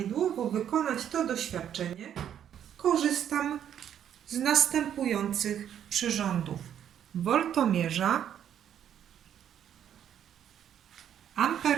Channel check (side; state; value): left; quieter; 9.6 dB